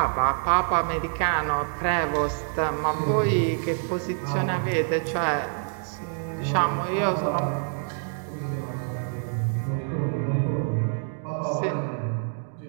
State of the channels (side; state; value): left; silent; 61 dB below the other